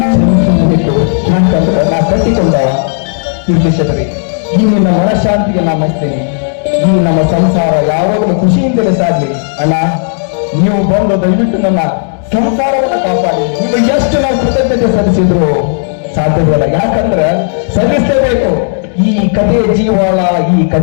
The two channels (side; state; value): right; silent; digital silence